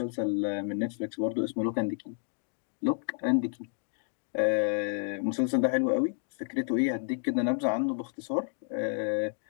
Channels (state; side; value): silent; right; 57 dB below the other